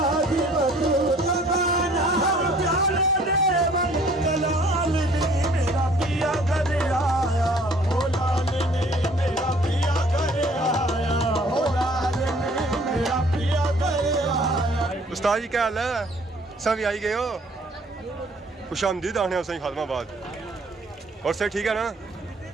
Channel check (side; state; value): both; normal; correlation 0.56